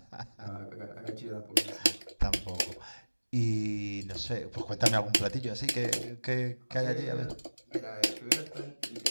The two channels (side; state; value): both; inverted; correlation -1.00